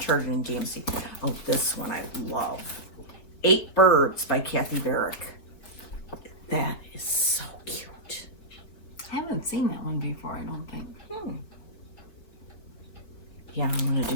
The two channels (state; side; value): late; right; 4.9 ms